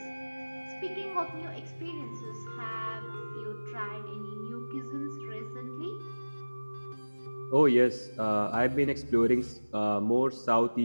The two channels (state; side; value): inverted; both; correlation -1.00